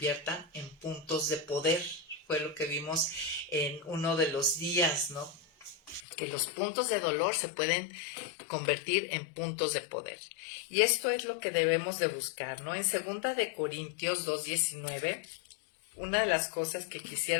en puntos de poder. Fue lo que vimos en uno de los días, ¿no? Que los puntos de dolor se pueden convertir en puntos de poder. Y esto es lo que debemos de buscar, ¿no? En 2 de Corintios 2:19, una de las cosas que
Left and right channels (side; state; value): right; drops out; at 6.1 s